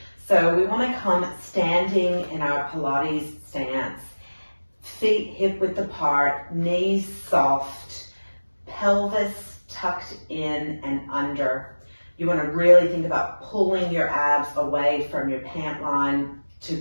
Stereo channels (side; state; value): both; inverted; correlation -1.00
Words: So we want to come standing in our Pilates stance, feet hip width apart, knees soft, pelvis tucked in and under. You want to really think about pulling your abs away from your pant line to